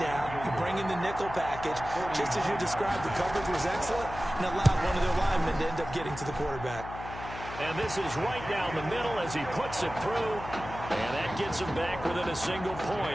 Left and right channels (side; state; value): left; noise; hum, 11 dB below the sound